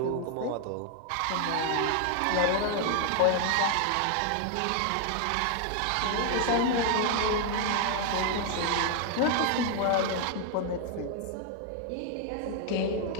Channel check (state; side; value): different; both; correlation 0.00